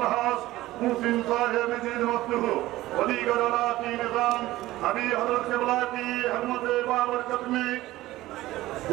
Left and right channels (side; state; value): left; quieter; 16.7 dB